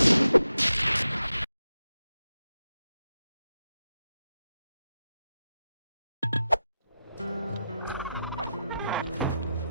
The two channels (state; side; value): inverted; both; correlation -0.88